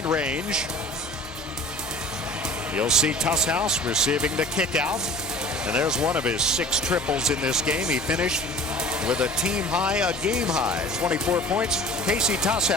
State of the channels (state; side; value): normal; both; correlation 0.43